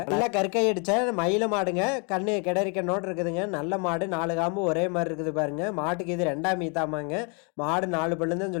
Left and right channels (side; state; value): right; quieter; 35.8 dB